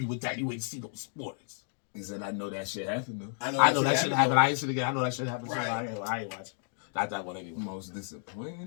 with that? You ain't see no sports. He said, I know that shit happened, though. I know that shit happened. I ain't seen it again. I know that shit happened. Right. I ain't watching. Not that one anyway. Most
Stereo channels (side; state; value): right; silent; 57 dB below the other